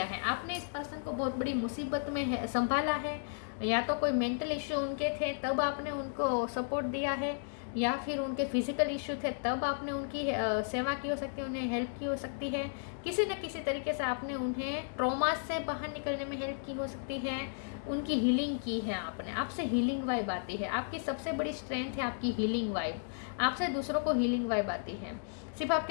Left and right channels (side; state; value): right; silent; digital silence